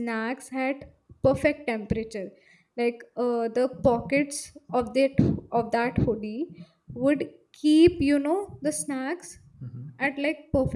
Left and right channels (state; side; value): identical; both; correlation 1.00